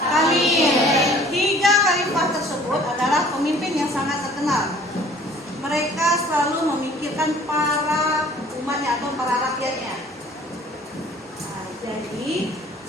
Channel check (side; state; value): both; normal; correlation 0.52